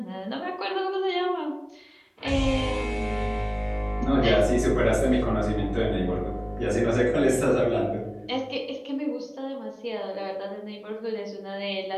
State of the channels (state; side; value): identical; both; correlation 1.00